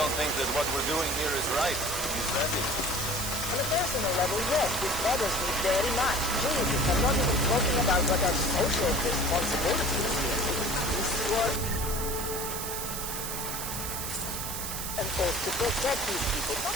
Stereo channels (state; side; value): noise; right; hiss, 5 dB below the sound